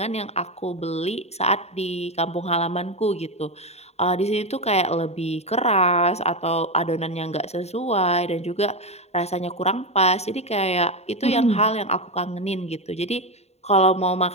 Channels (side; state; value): right; late; 0.31 ms